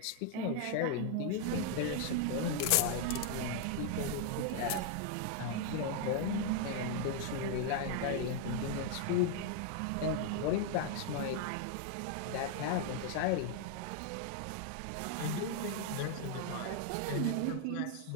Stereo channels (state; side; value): different; both; correlation 0.00